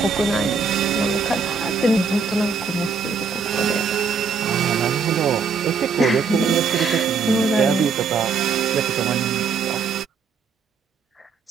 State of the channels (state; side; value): quieter; left; 5.1 dB